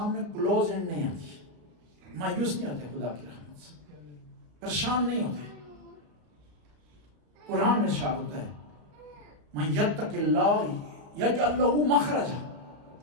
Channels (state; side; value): late; left; 34 ms